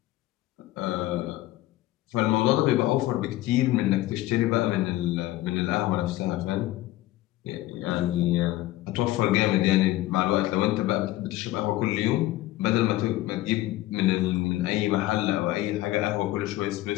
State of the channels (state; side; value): quieter; right; 16.3 dB